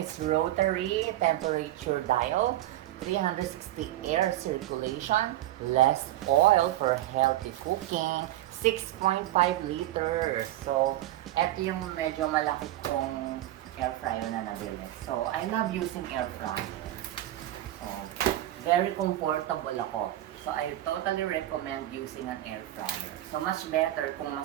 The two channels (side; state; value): left; quieter; 14.6 dB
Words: rotary temperature dial, 360 air circulation, less oil for healthy cooking, 6.5 liters. So eto yung medyo malaki kong air fryer na nabili. So I love using air fryer. So very comfortable ako. So I totally recommend using an air fryer. So much better kung